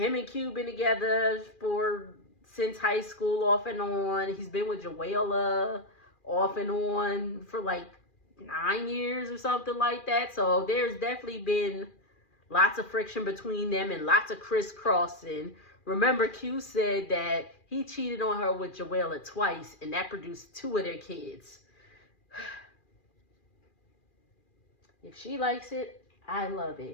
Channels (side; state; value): right; late; 2.4 ms